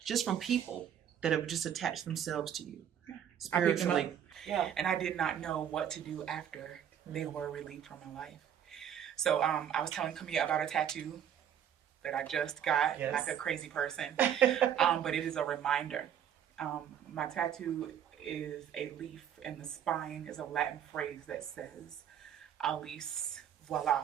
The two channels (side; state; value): left; quieter; 9.3 dB